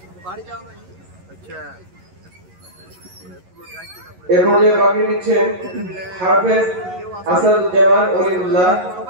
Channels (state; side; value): late; left; 11 ms